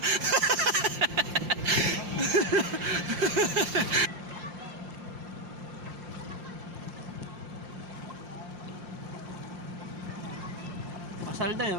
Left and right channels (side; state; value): left; late; 5.7 ms